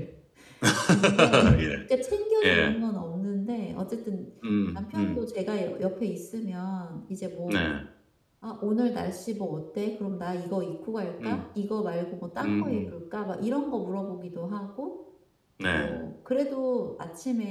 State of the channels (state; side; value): identical; both; correlation 1.00